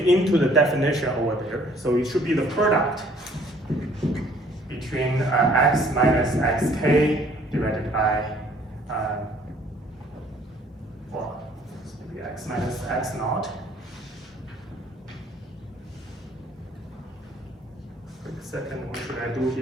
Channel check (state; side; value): normal; both; correlation 0.59